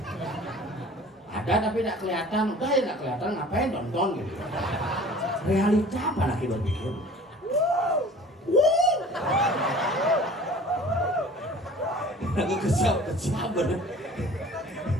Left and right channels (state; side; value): normal; both; correlation 0.46